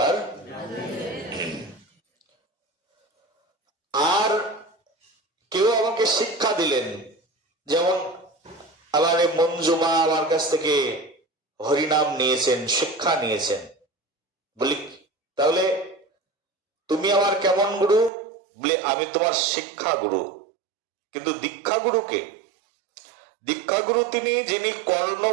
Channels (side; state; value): left; drops out; at 18.1 s